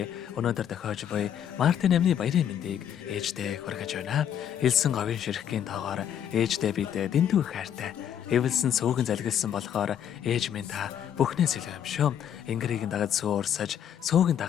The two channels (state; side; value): quieter; right; 9.4 dB